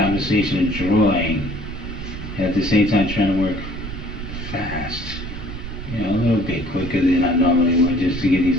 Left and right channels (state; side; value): noise; right; rumble, 9 dB below the sound